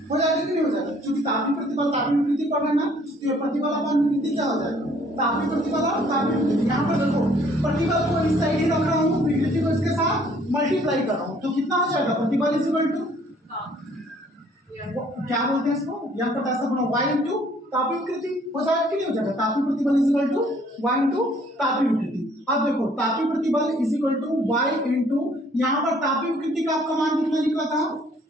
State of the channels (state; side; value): normal; both; correlation 0.60